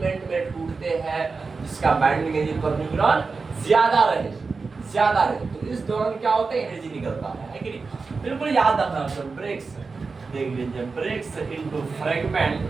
में टूटते हैं जिसका बाइंडिंग एनर्जी पर न्यूक्लियन ज्यादा रहे। तो इस दौरान क्या होता है, एनर्जी निकलता है कि नहीं। बिल्कुल याद रखना। तो ब्रेक्स देख लीजिए, ब्रेक्स इनटू फ्रैगमेंट,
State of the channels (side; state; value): left; quieter; 4.4 dB